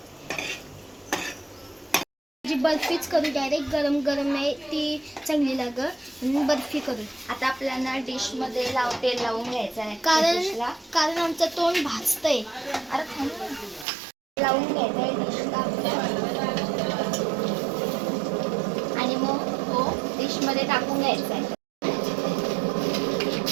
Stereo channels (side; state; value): left; drops out; at 13.9 s